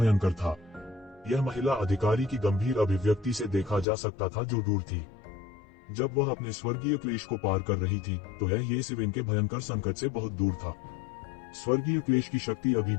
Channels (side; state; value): right; drops out; at 3.9 s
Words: था। यह महिला अधिकारी की गंभीर अभिव्यक्ति से देखा जा सकता था, जो दूर थी। जब वह अपने स्वर्गीय क्लेश को पार कर रही थी तो यह येज़िवेन के भयंकर संकट से बहुत दूर था। स्वर्गीय क्लेश की शक्ति अभी